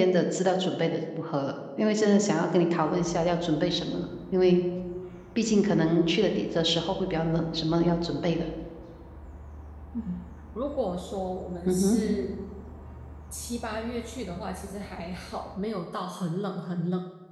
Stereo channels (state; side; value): identical; both; correlation 1.00